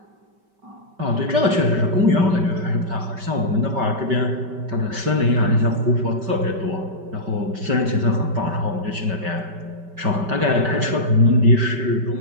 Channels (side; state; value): left; late; 5.2 ms